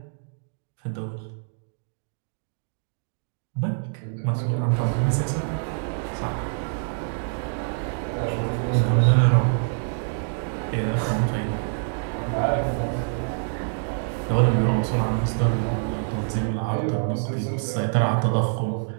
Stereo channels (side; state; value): left; silent; digital silence